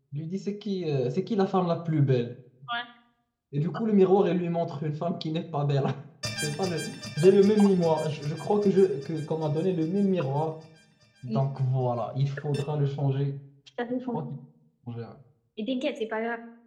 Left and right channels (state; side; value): identical; both; correlation 1.00